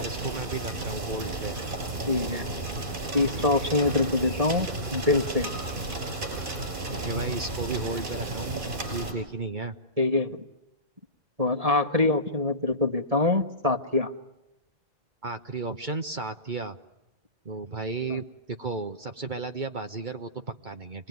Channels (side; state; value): left; late; 2.5 ms